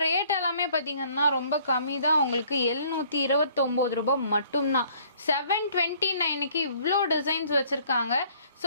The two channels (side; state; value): both; inverted; correlation -0.58